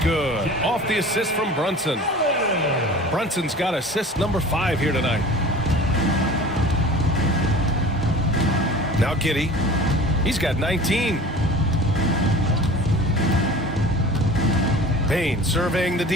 good. Off the assist from Brunson. Brunson's got assist number 5 here tonight. Now Giddey. He's got 19. Bane surveying the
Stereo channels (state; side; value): normal; both; correlation 0.41